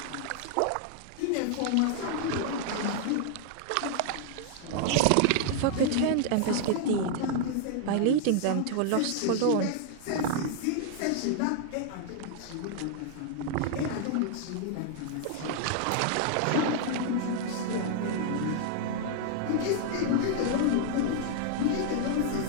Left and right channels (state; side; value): different; both; correlation 0.00